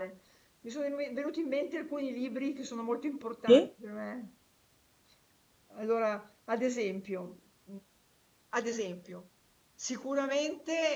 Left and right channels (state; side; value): identical; both; correlation 1.00